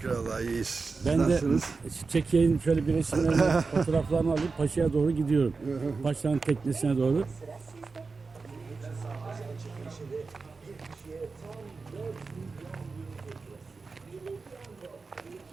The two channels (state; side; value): quieter; left; 4.3 dB